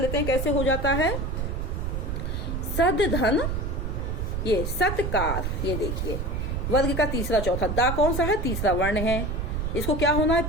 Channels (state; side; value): noise; right; rumble, 2 dB below the sound